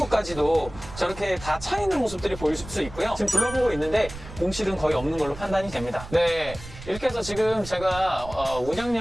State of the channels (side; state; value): right; noise; rumble, 14 dB below the sound